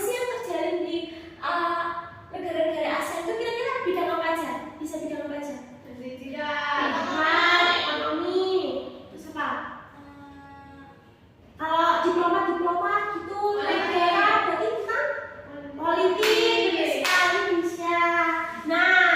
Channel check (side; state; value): both; identical; correlation 1.00